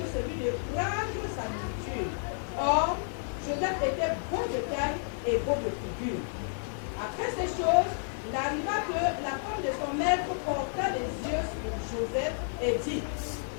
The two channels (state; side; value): silent; right; digital silence